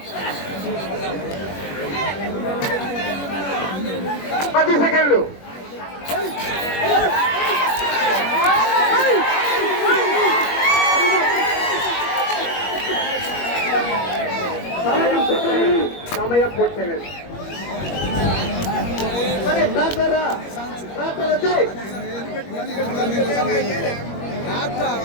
10 సెకండ్లు. సమయం పూర్తయినది.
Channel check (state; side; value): late; right; 21 ms